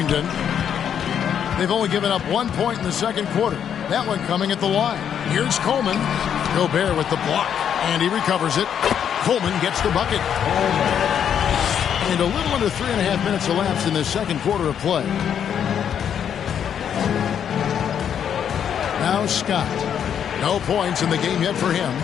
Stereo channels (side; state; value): right; quieter; 8.6 dB